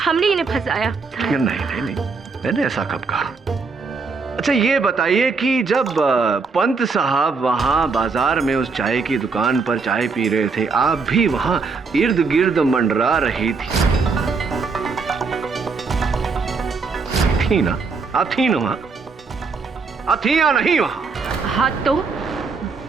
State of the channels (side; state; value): left; quieter; 4.6 dB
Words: इन्हें फंसाया। नहीं नहीं नहीं, मैंने ऐसा कब कहा? अच्छा ये बताइए कि जब पंत साहब वहां बाजार में उस चाय की दुकान पर चाय पी रहे थे, आप भी वहां इर्द गिर्द मंडरा रही थी ना? आप थी ना वहां? आप थी या नहीं वहां? हाँ, तो